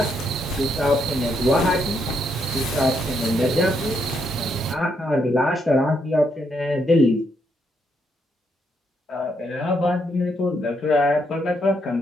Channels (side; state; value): both; normal; correlation 0.76